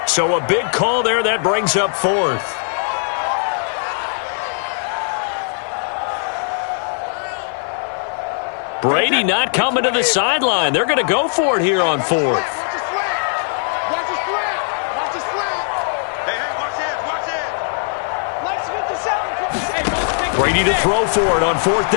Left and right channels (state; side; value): silent; right; 65 dB below the other